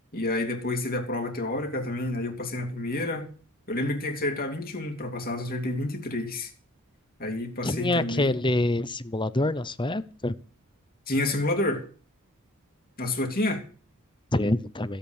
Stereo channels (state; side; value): normal; both; correlation 0.51